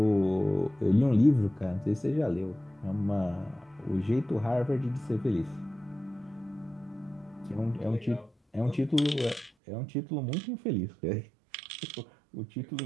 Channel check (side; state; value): left; drops out; at 9.5 s